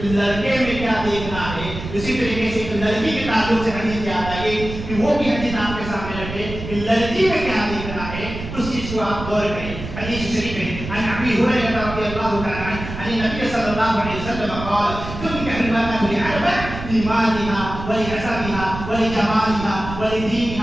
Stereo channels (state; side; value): noise; right; rumble, 9 dB below the sound